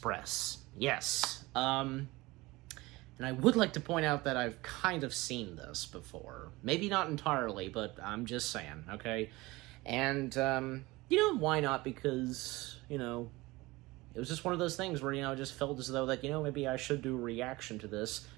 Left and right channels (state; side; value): quieter; left; 21.1 dB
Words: Yes. And I would like to point out that I've kind of seen this before. Maybe not entirely, but I'm just saying, okay? And, why not? Because, it was just one of those things where, I just felt as though that, maybe I should do a reaction to this,